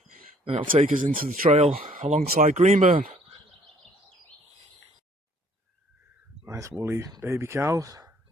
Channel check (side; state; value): both; normal; correlation 0.60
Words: and it'll take us into the trail alongside Greenburn. Nice woolly baby calves.